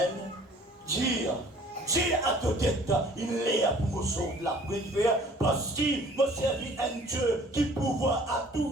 Dire à ta tête, il est pour me sauver la prière, parce qu'il me servit un Dieu qui pouvoir à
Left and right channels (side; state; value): both; normal; correlation 0.52